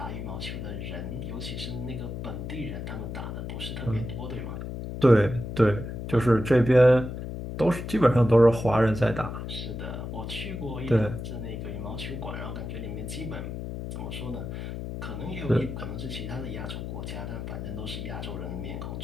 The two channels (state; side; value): noise; left; hum, 6 dB below the sound